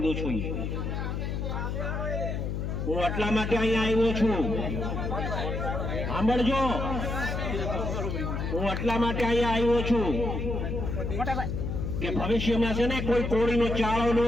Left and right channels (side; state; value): left; noise; hum, 2 dB below the sound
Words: છું। હું એટલા માટે અહીંયા આવ્યો છું, સાંભળજો। હું એટલા માટે અહીંયા આવ્યો છું કે ભવિષ્યમાં છે ને કોઈ કોળીનો ચાળો ન